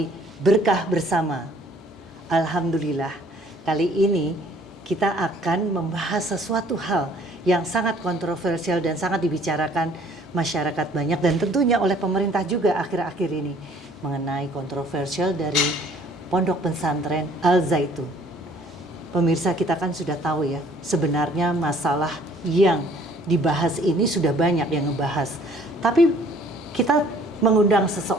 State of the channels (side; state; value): both; normal; correlation 0.57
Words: Berkah Bersama. Alhamdulillah, kali ini kita akan membahas sesuatu hal yang sangat kontroversial dan sangat dibicarakan masyarakat banyak dan tentunya oleh pemerintah juga akhir-akhir ini mengenai kontroversial dari Pondok Pesantren Al Zaitun. Pemirsa, kita kan sudah tahu ya, sebenarnya masalah yang dibahas ini sudah banyak yang ngebahas. Tapi kita mengundang